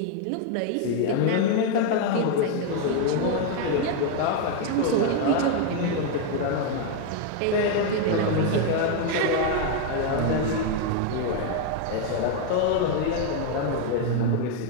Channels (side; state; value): both; different; correlation 0.00